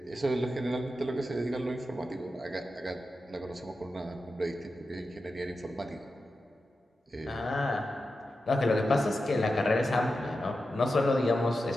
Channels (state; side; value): normal; both; correlation 0.91